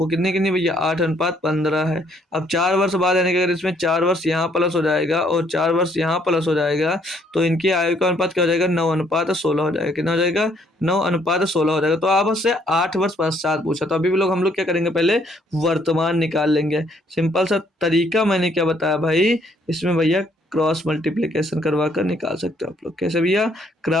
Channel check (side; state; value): both; normal; correlation 0.67